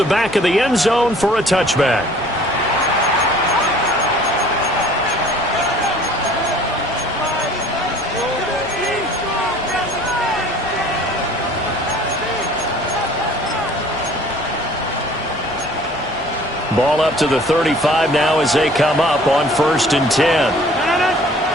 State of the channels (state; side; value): normal; both; correlation 0.52